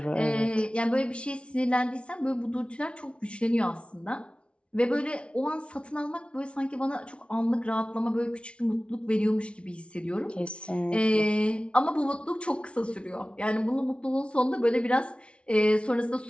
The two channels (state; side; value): late; right; 0.059 ms